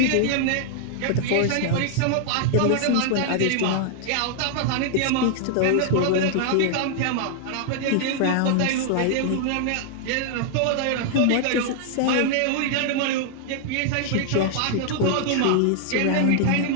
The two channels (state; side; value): different; both; correlation 0.00